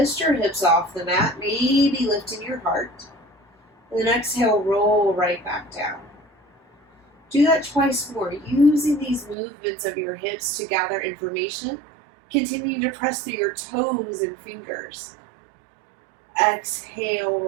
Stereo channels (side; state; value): left; drops out; at 9.3 s